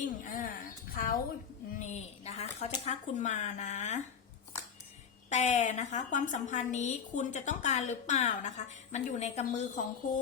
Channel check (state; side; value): quieter; right; 7.1 dB